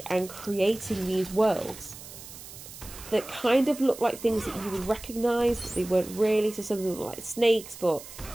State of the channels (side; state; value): right; noise; hiss, 15 dB below the sound